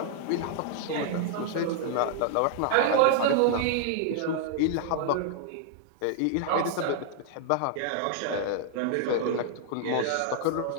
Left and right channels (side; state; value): both; different; correlation -0.01